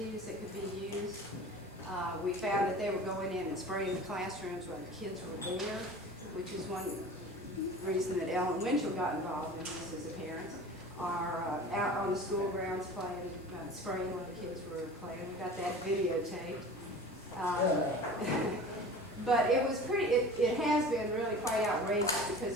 that could be used. We found that they were going in and spraying the classrooms when the kids were there, which is one reason that Ellen Winchell got involved in this as a parent, are out on the school grounds playing, spraying when the kids were playing. We got that videotaped. But it was it has been really quite outrageous because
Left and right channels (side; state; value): both; normal; correlation 0.39